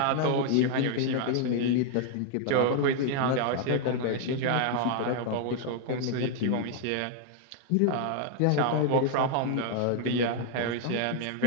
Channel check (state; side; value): different; both; correlation 0.00